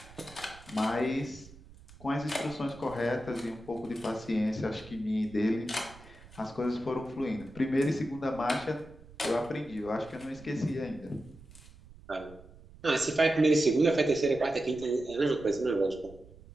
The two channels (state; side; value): noise; right; rumble, 21 dB below the sound